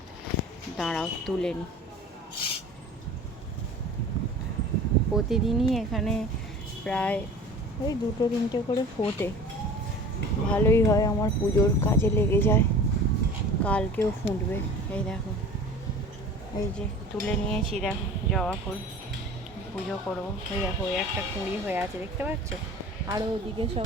দাঁড়াও তুলে নি। প্রতিদিনই এখানে প্রায় ওই 2-3টে করে ফোটে। ভালোই হয়, আমার পুজোর কাজে লেগে যায়। কালকেও ফুটবে। এই দেখো, এই যে তুলে নিয়েছি, দেখো জবা ফুল। পুজো করবো। ওই দেখো, ওই একটা কুঁড়ি হয়ে আছে, দেখতে পাচ্ছ? আরও ওদিকে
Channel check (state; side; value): normal; both; correlation 0.41